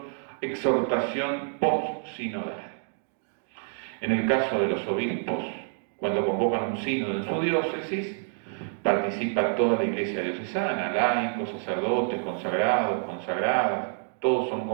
exhortación post-sinodal. En el caso de los obispos, cuando convocan un sínodo en su diócesis, participa toda la iglesia diocesana, laicos, sacerdotes, consagrados, consagradas, todos son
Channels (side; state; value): left; silent; 60 dB below the other